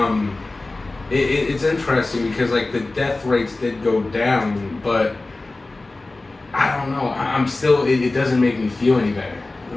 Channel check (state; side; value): quieter; right; 3.1 dB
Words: it's interesting because like the death rates did go down, but I don't know. I'm still it doesn't make me feel any better.